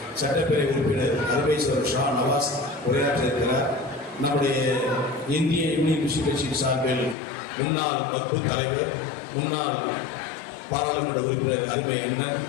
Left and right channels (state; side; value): drops out; right; at 7.2 s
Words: சட்டப்பேரவை உறுப்பினர் அருமேஸ்வர் ஷா நவாஸ் உரையாற்றிருக்கிறார். நம்முடைய இந்திய யூனியன் முஸ்லிம் கட்சியின் சார்பில் முன்னாள் வகுப்பு தலைவர், முன்னாள் பாராளுமன்ற உறுப்பினர் அருமை அண்ணன்